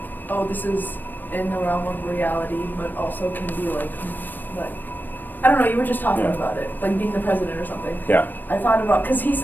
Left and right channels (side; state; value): right; late; 0.091 ms